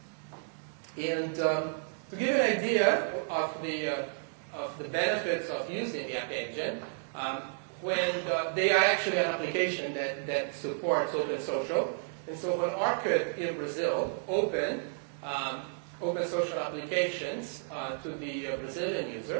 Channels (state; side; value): silent; left; digital silence